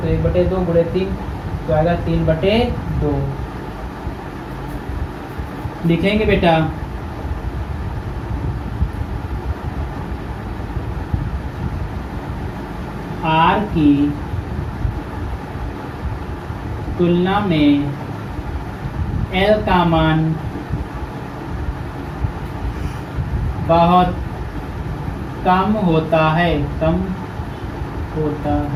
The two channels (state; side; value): identical; both; correlation 1.00